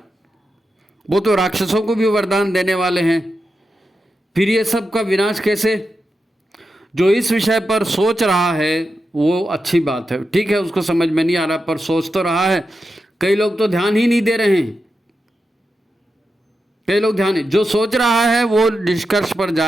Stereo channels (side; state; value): both; normal; correlation 0.89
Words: वो तो राक्षसों को भी वरदान देने वाले हैं, फिर ये सब का विनाश कैसे? जो इस विषय पर सोच रहा है वो अच्छी बात है, ठीक है, उसको समझ में नहीं आ रहा पर सोच तो रहा है। कई लोग तो ध्यान ही नहीं दे रहे हैं। कई लोग ध्यान, जो सोच रहा है वो निष्कर्ष पर